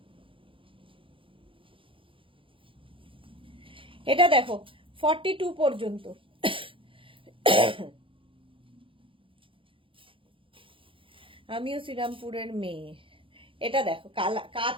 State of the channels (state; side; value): late; left; 0.25 ms